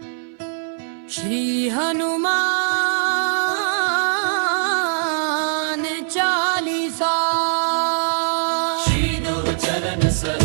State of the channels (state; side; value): silent; left; 59 dB below the other